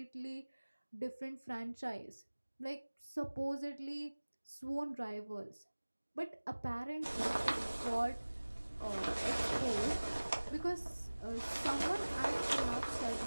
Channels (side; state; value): both; inverted; correlation -1.00